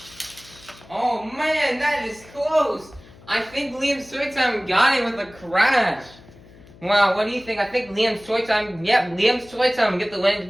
Oh man, that is close. I think Liam's Toy Time got it with a crash. Wow, what do you think? I think Liam's Toy Time, yep, Liam's Toy Time will get the win to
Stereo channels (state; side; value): noise; left; hum, 23 dB below the sound